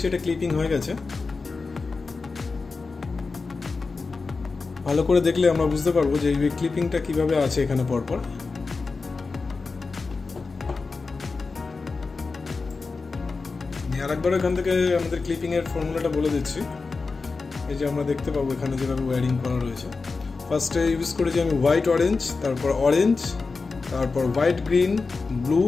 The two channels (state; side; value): quieter; right; 4.2 dB